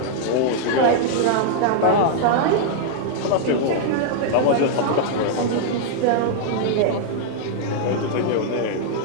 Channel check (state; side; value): different; both; correlation -0.01